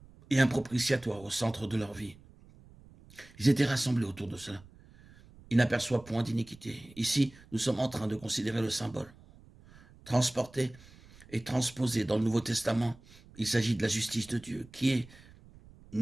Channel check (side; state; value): right; noise; rumble, 23 dB below the sound